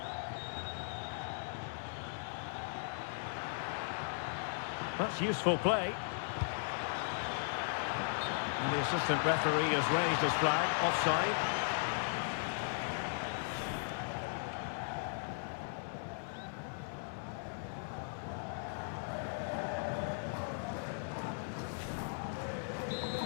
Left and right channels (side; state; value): right; silent; digital silence